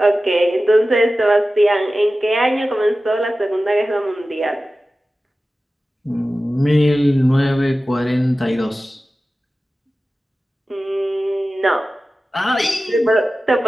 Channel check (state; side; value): normal; both; correlation 0.95